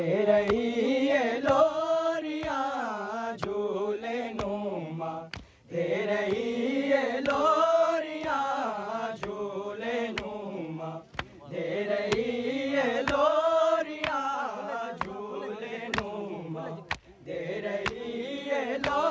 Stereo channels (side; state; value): both; identical; correlation 1.00